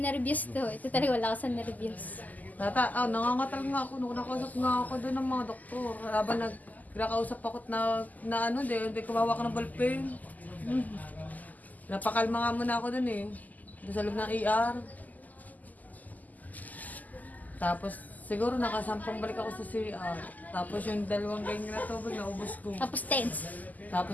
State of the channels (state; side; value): late; right; 0.080 ms